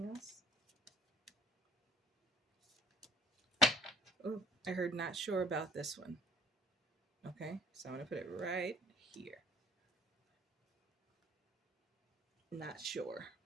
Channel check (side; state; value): both; normal; correlation 0.55